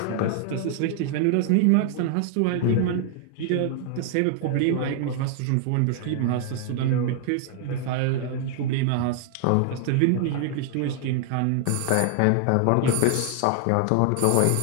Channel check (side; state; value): both; different; correlation 0.00